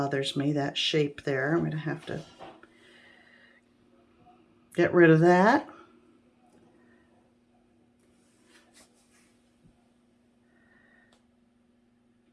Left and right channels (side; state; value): both; identical; correlation 1.00